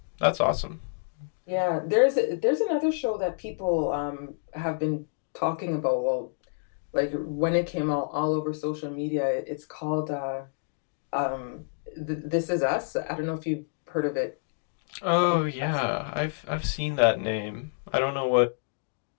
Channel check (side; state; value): right; silent; digital silence